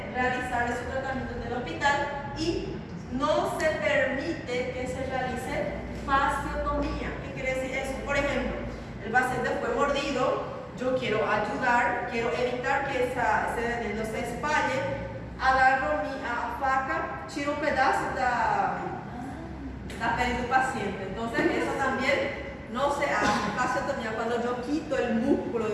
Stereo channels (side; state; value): both; identical; correlation 1.00